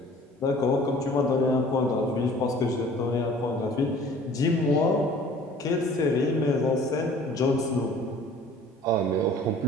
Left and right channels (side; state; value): both; normal; correlation 0.49